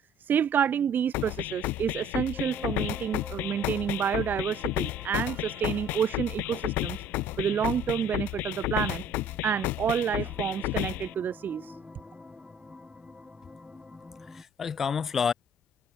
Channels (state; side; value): normal; both; correlation 0.52